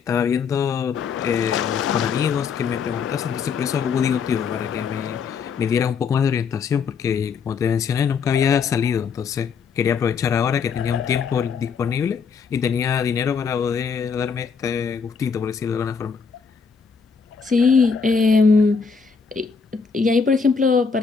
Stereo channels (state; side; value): quieter; right; 5.7 dB